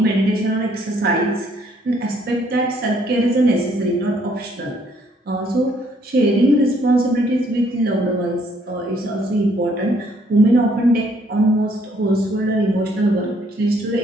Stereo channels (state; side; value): normal; both; correlation 0.66